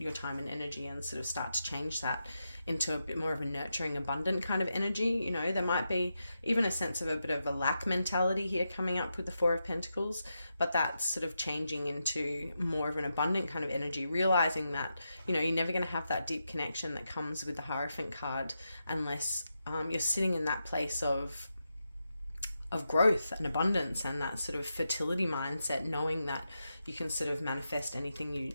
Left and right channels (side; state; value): both; inverted; correlation -0.87